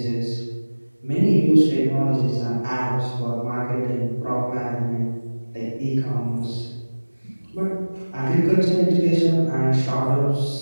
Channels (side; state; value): both; inverted; correlation -1.00